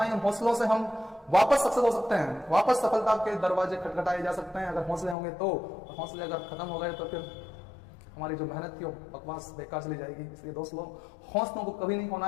है। हौसलों से हम वापस सक्सेस हो सकते हैं, वापस सफलता के दरवाजे खटखटाए जा सकते हैं अगर हौसले होंगे तो। हौसले अगर खत्म हो गए तो फिर हमारी जो मेहनत की बकवास बेकार चली जाएगी। इसलिए दोस्तों, हौसलों को कभी नहीं खोना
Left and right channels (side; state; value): right; drops out; at 5.2 s